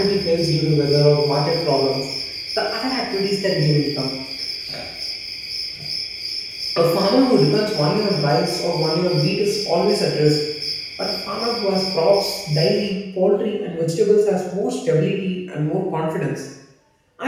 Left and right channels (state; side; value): identical; both; correlation 1.00